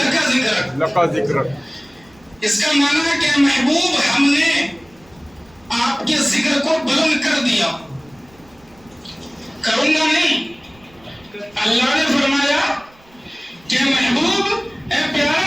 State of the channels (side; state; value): right; noise; rumble, 29 dB below the sound